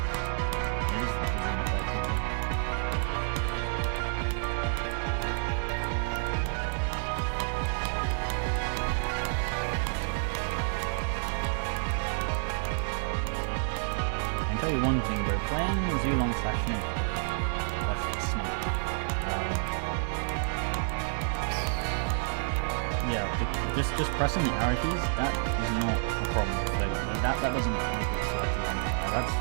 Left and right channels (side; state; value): left; silent; 58 dB below the other